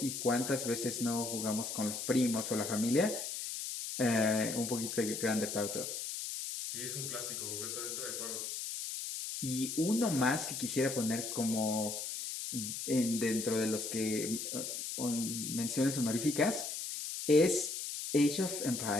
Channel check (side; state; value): left; noise; hiss, 5 dB below the sound